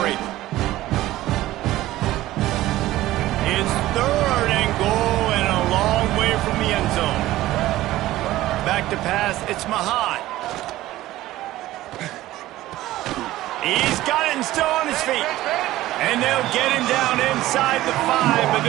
It's 3rd and goal and a long way from the end zone. Back to pass, it's Mahan. He's got it and still on his feet. And they'll get him down inside the 5, but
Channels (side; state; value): left; quieter; 15.9 dB